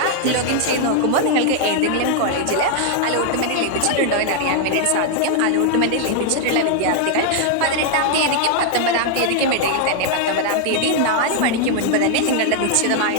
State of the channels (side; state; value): both; different; correlation 0.00